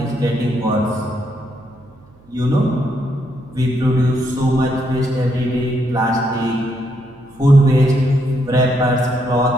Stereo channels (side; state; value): right; noise; hum, 28 dB below the sound